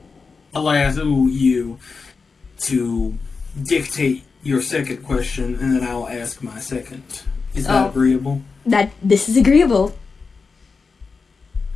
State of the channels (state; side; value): quieter; right; 4.7 dB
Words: I'll ask you to dictate your second question, and then I'll ask my second. Is that agreeable? This is agreeable.